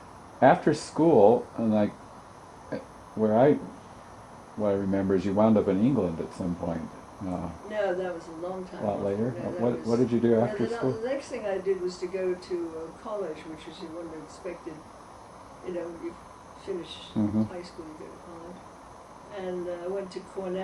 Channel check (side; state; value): both; identical; correlation 1.00